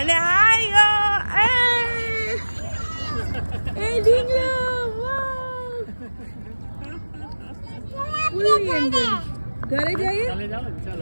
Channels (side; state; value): both; inverted; correlation -1.00